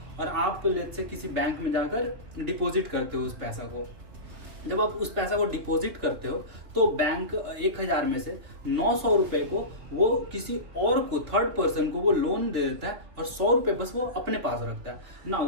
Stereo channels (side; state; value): left; late; 3.4 ms